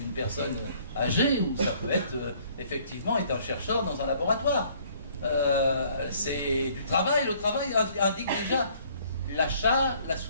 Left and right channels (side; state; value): both; inverted; correlation -0.60